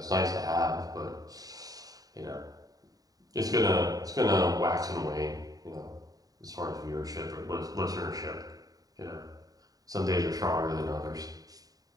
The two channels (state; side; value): late; left; 0.18 ms